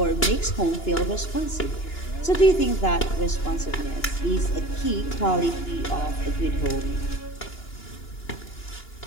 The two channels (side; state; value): right; late; 2.9 ms